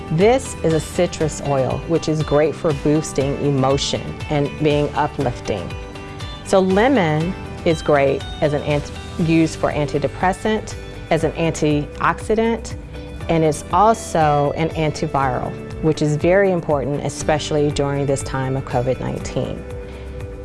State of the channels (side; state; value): both; identical; correlation 1.00